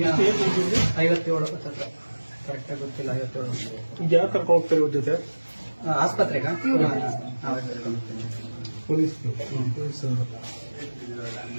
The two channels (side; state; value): both; inverted; correlation -1.00